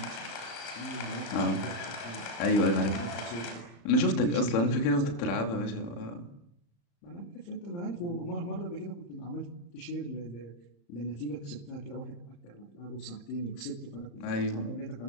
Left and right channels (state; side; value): late; right; 35 ms